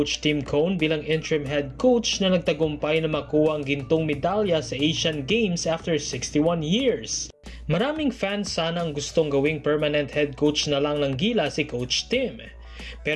Tim Cone bilang interim head coach na nagtagumpay na makuha ang gintong medalya sa Asian Games after 61 years. Maraming fans sana ang gustong gawing permanent head coach na lang ng Gilas si Coach Tim.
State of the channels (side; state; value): both; identical; correlation 1.00